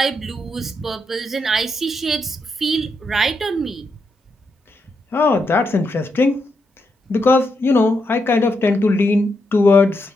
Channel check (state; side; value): normal; both; correlation 0.82